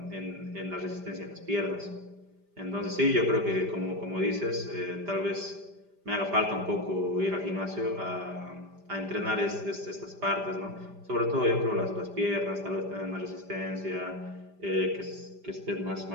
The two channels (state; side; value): late; left; 5.0 ms